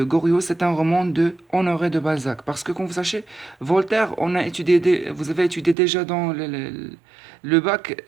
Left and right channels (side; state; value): left; drops out; at 5.8 s